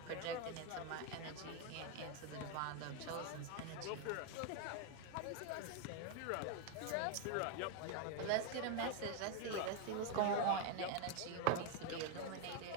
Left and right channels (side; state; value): both; different; correlation 0.01